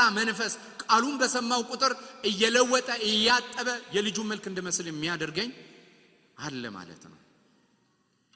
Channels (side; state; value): both; identical; correlation 1.00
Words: መንፈስ፣ ቃሉን በሰማው ቁጥር እየለወጠ እያጠበ የልጁን መልክ እንድመስል የሚያደርገኝ አለ ማለት ነው።